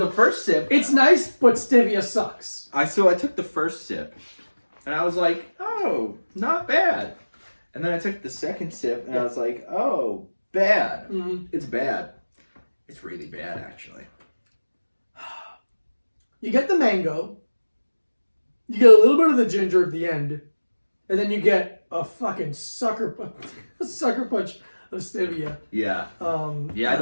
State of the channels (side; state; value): both; inverted; correlation -1.00